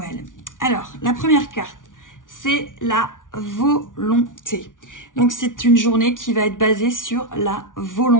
Alors la première carte, c'est la volonté. Donc c'est une journée qui va être basée sur la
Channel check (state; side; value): late; right; 0.88 ms